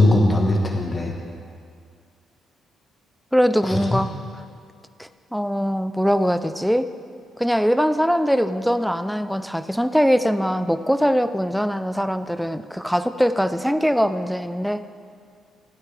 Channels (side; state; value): both; normal; correlation 0.96